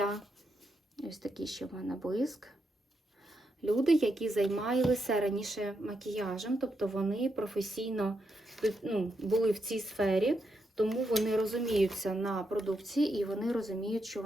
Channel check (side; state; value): both; normal; correlation 0.82